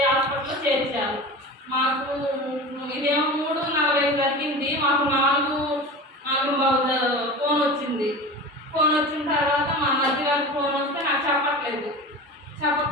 హాస్పిటల్లో చేర్చారు. మాకు ఇదేమో 3:40 జరిగింది. మాకు 4:45 ఫోన్ వచ్చింది. ఫోన్ వచ్చిన తర్వాత మా మధ్య గారికి ఫోన్ వస్తే నాకు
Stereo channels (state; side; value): normal; both; correlation 0.32